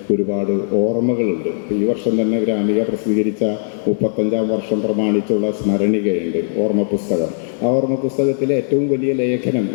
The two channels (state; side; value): silent; right; digital silence